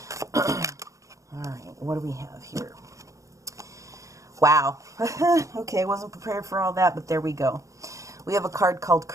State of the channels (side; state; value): left; late; 0.15 ms